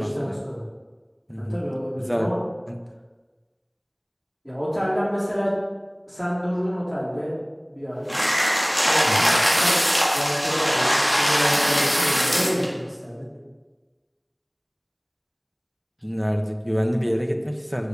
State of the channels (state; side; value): identical; both; correlation 1.00